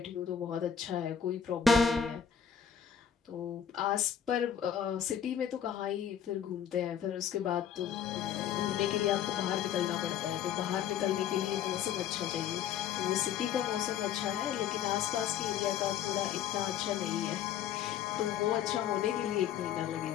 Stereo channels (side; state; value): right; quieter; 8.6 dB